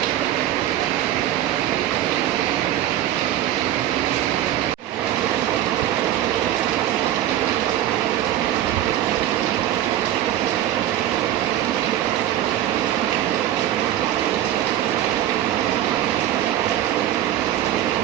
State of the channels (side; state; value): left; quieter; 12.4 dB